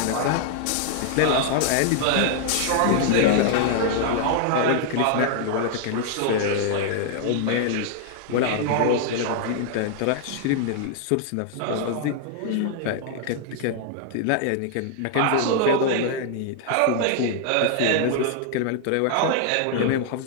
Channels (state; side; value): different; both; correlation 0.00